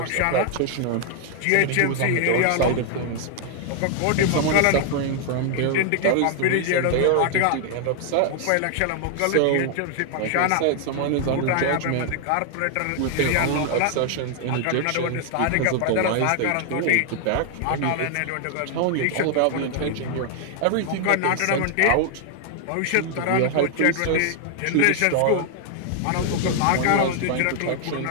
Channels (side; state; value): both; different; correlation 0.00